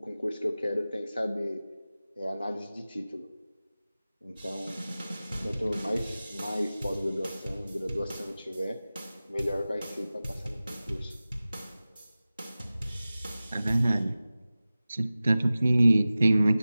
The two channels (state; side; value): inverted; both; correlation -0.96